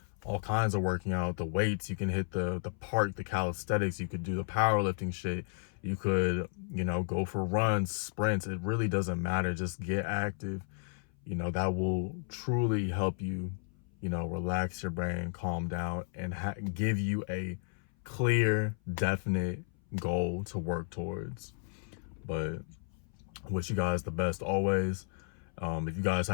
all kinds of working out. The weights, you can hit the park, the calisthenics, you could do the powerlifting shit. You could, you know, go for runs, sprints. It really doesn't matter. Just get active. You know, that will truly help you, you know, relax your brain, calm down, and give you a clear, definite goal to work towards. But wish you guys the best always. If you guys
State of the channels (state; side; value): silent; right; 56 dB below the other